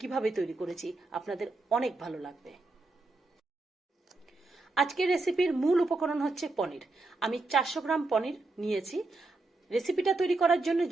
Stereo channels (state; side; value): quieter; left; 3.2 dB